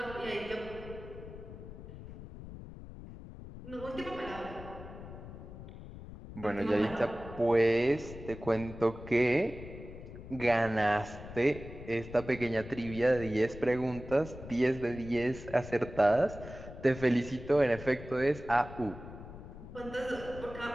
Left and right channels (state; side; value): noise; left; rumble, 13 dB below the sound